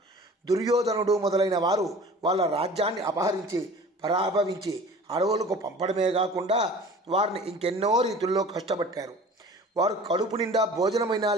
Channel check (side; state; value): both; normal; correlation 0.43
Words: దుర్యోధనుడు మొదలైన వారు వాళ్ళ రాజ్యాన్ని అపహరించి పరాభవించి అడవులకు పంపడమే కాకుండా వారిని ఇంకెన్నో రీతుల్లో కష్టపట్టారు. వారు కడుపు నిండా భోజనమైనా